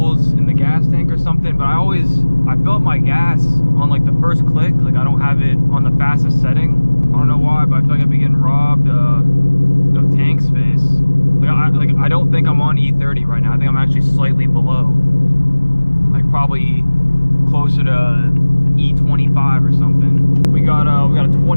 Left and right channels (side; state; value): both; inverted; correlation -1.00